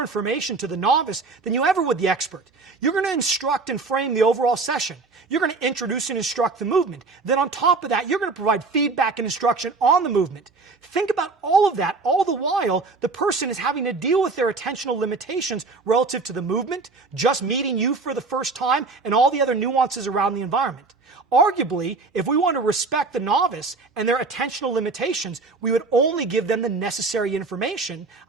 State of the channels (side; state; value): left; quieter; 4.0 dB